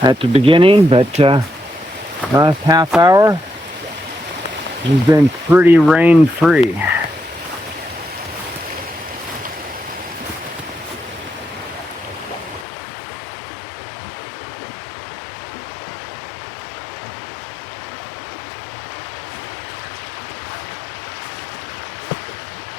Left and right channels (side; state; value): right; drops out; at 12.7 s